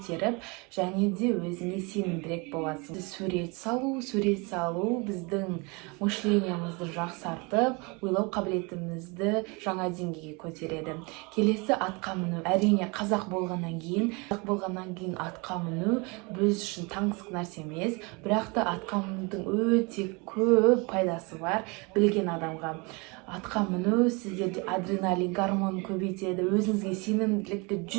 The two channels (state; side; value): quieter; left; 29.0 dB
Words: және де өзіңе сенімдірек боласың. Сурет салу біздің мышлениемізді жақсартып, ойлау қабілетімізді жаңа деңгейге көтереді. Келесі атқа міну. Әрине қазақ болғаннан кейін атқа міну біз үшін таңсық нәрсе емес, бірақ та атқа мінудің өте көп пайдасы бар білген адамға. Атқа міну сіздерде адреналин гормонын көбейтеді, өзіңізге сенімділікті